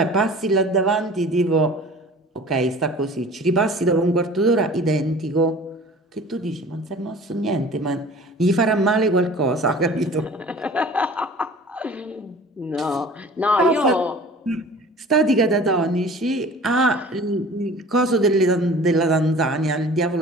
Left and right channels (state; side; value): normal; both; correlation 0.44